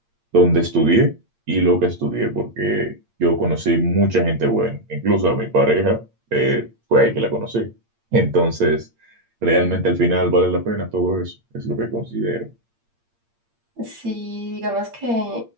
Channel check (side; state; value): left; late; 8.7 ms